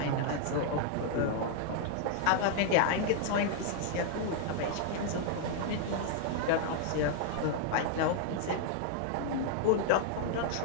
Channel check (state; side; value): different; both; correlation -0.01